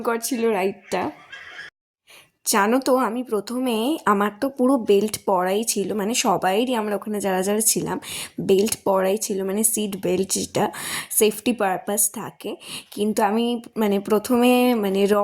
ছিল রাইডটা। জানো তো আমি প্রথমে, আমার তো পুরো বেল্ট পরাই ছিল, মানে সবাইরই আমরা ওখানে যারা যারা ছিলাম বেল্ট পরাই ছিল, মানে সিট বেল্ট যেটা সেফটি পারপাস থাকে, কিন্তু আমি মানে প্রথমে মানে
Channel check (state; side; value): identical; both; correlation 1.00